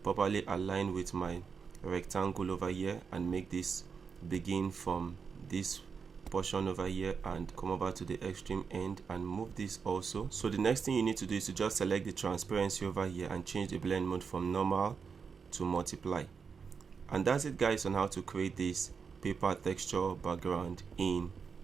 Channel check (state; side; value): quieter; left; 5.8 dB